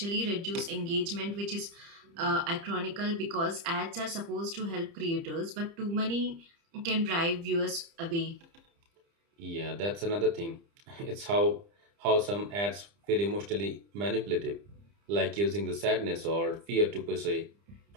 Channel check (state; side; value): late; left; 30 ms